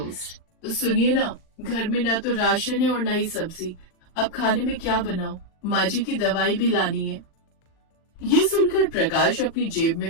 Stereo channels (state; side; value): late; right; 40 ms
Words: तो सुनिए ना, घर में ना तो राशन है और ना ही सब्जी, अब खाने में क्या बनाऊं, माँ जी की दवाई भी लानी है। ये सुनकर प्रकाश अपनी जेब में